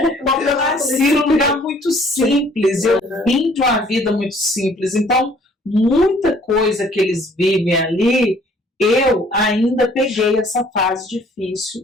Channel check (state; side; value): normal; both; correlation 0.58